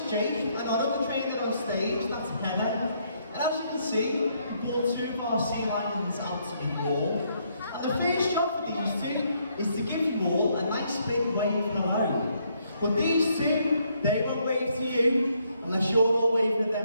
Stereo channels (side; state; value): both; inverted; correlation -0.72